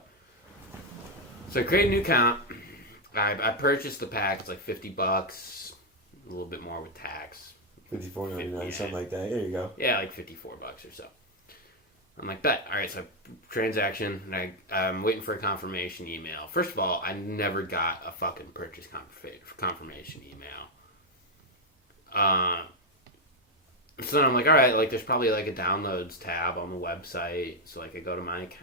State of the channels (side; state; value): both; normal; correlation 0.02